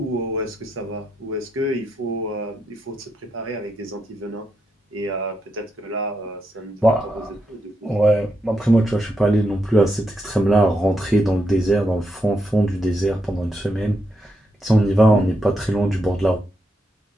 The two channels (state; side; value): normal; both; correlation 0.82